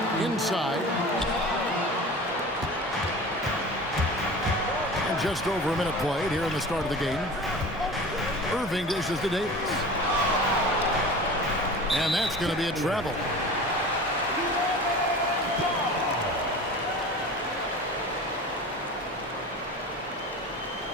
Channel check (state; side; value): normal; both; correlation 0.37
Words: Inside. And just over a minute played here in the start of the game. Irving dishes to Davis. And that's going to be a travel.